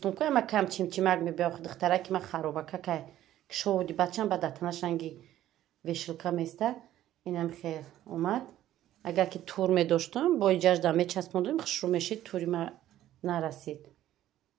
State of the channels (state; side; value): quieter; left; 13.0 dB